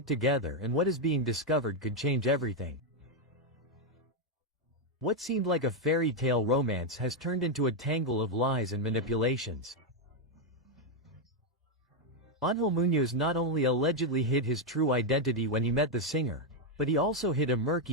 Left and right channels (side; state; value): both; normal; correlation 0.02